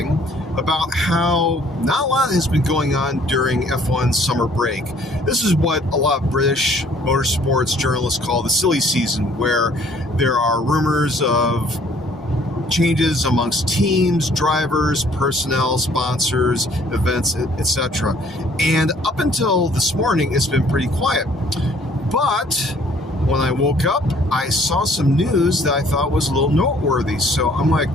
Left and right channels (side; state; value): both; normal; correlation 0.59